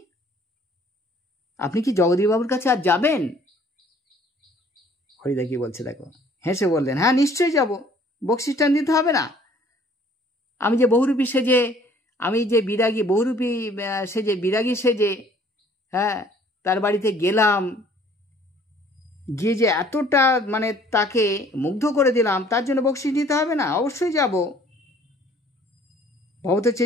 আপনি কি জগদীশবাবুর কাছে আর যাবেন? হরিদা কি বলছে দেখো, হেসে বললেন হ্যাঁ নিশ্চয়ই যাব, বকশিসটা নিতে হবে না? আমি যে বহুরূপী সেজে, আমি যে বিরাগী বহুরূপী সেজে, বিরাগী সেজে, হ্যাঁ তার বাড়িতে গেলাম, গিয়ে যে এতটা তাকে মুগ্ধ করে দিলাম, তার জন্য বকশিস নিতে হবে না? অবশ্যই যাব। ভবত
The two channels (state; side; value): normal; both; correlation 0.56